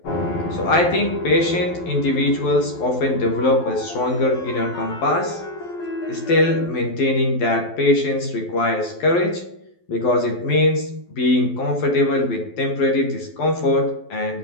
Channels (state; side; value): late; right; 12 ms